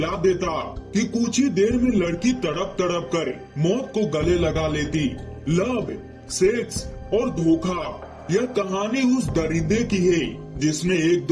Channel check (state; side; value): identical; both; correlation 1.00